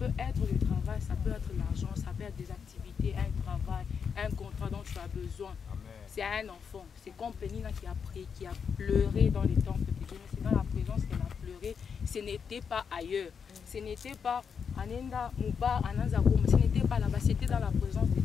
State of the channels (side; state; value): right; quieter; 6.5 dB